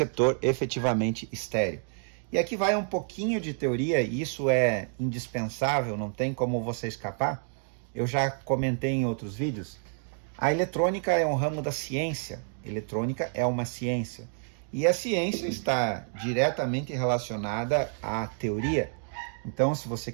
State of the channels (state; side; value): silent; left; 56 dB below the other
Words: efetivamente estéreo. E aqui vai um pouquinho de teoria, e isso é indispensável, não tem como você escapar. Eu já comentei em outros vídeos. A eletrônica é um ramo da ciência. Eletrônica é uma ciência. E a ciência está diretamente relacionada à teoria. Então, se você